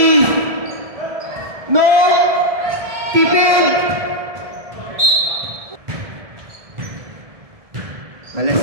No. Keep in.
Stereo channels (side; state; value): left; late; 1.7 ms